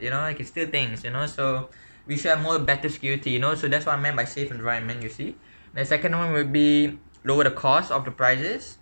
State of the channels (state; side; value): inverted; both; correlation -1.00